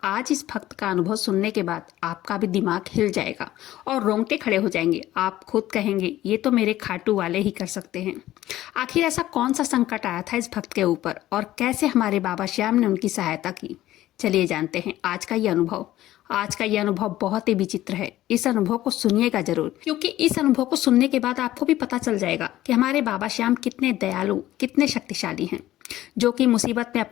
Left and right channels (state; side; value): quieter; right; 14.6 dB